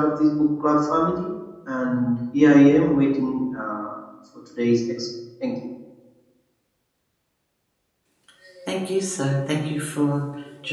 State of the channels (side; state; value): both; identical; correlation 1.00